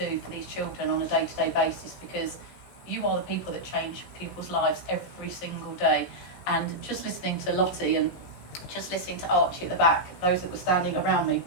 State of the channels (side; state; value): right; late; 16 ms